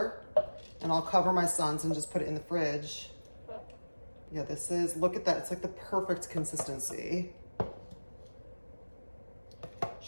and I'll cover my son's and just put it in the fridge. Yeah, this is, look at that. It's like the perfect consistency.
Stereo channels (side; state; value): both; inverted; correlation -1.00